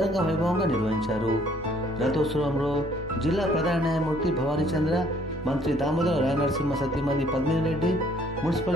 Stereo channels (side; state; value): both; normal; correlation 0.61